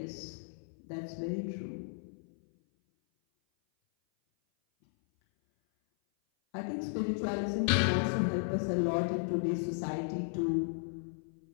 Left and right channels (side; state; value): right; silent; 55 dB below the other